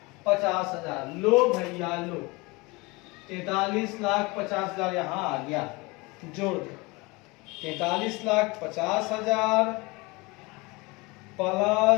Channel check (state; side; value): quieter; right; 25.0 dB